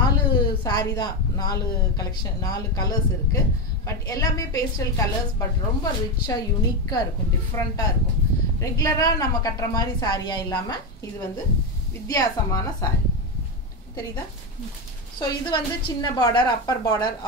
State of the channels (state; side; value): normal; both; correlation 0.12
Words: saree தான் 4 கலெக்ஷன் 4 கலர்ஸ் இருக்கு. பட் எல்லாமே பேஸ்டல் கலர்ஸ் பட் ரொம்ப ரிச்சா யூனிக்கா இருக்கும் டிஃபரண்டா இருக்கும். ரெகுலரா நம்ம கட்டற மாதிரி சாரியா இல்லாம இது வந்து வித்தியாசமான saree. தெரியுதா? சோ இது வந்து சின்ன border upper border